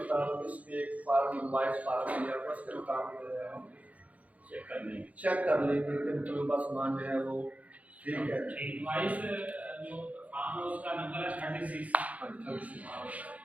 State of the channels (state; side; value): late; left; 0.069 ms